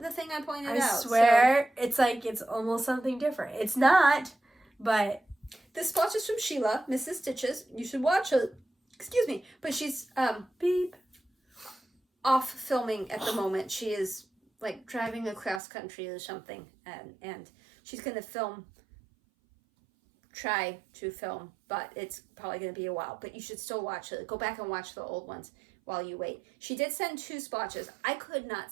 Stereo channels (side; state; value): left; drops out; at 15.6 s